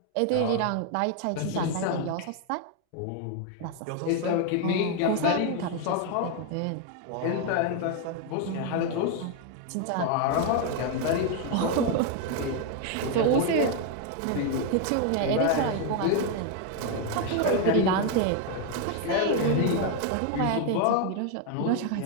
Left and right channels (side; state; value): both; different; correlation 0.01